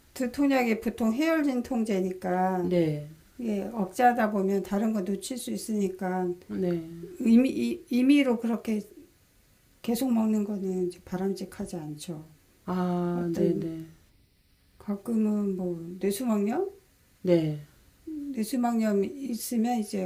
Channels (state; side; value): identical; both; correlation 1.00